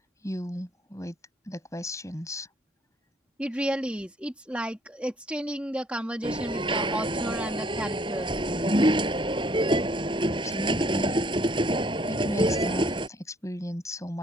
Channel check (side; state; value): both; normal; correlation 0.63